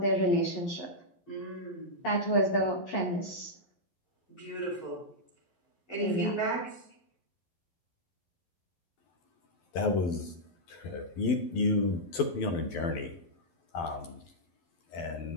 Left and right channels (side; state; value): right; late; 12 ms